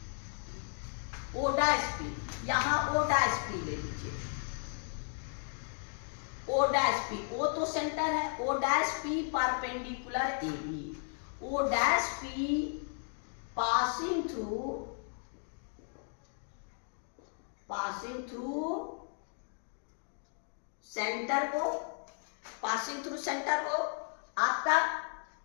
O डैश P, यहां O डैश P ले लीजिए, O डैश P, O तो सेंटर है, O dash P perpendicular AB, O dash P passing through centre को आपका।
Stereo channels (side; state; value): right; silent; 55 dB below the other